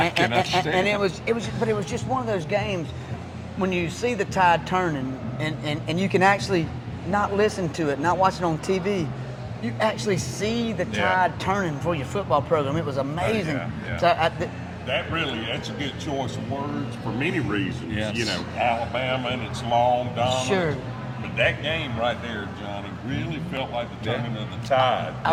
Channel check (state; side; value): identical; both; correlation 1.00